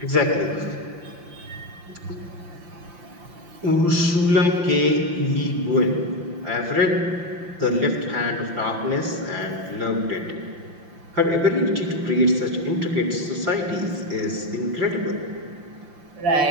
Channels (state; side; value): late; left; 5.8 ms